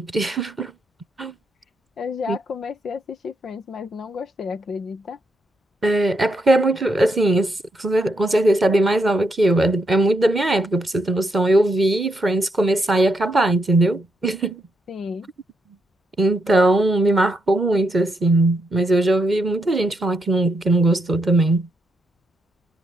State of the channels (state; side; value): normal; both; correlation 0.80